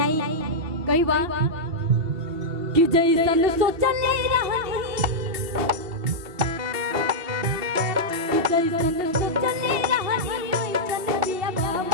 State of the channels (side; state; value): left; late; 2.8 ms